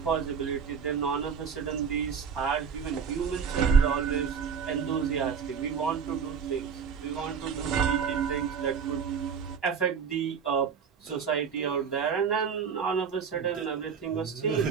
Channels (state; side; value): quieter; left; 6.7 dB